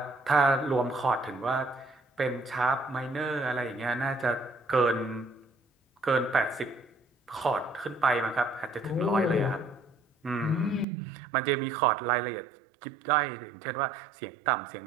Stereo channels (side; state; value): left; drops out; at 10.9 s